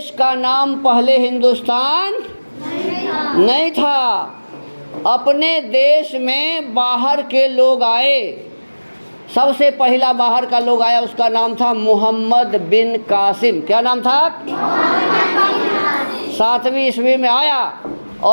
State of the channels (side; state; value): both; inverted; correlation -1.00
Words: का नाम पहले हिंदुस्तान नहीं था, अपने देश में बाहर के लोग आए। सबसे पहला बाहर का लोग आया, उसका नाम था मोहम्मद बिन कासिम। क्या नाम था, 7वीं ईस्वी में आया।